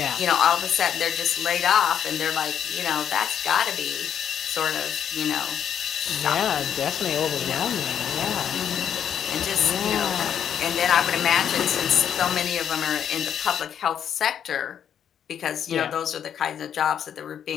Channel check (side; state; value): right; quieter; 8.9 dB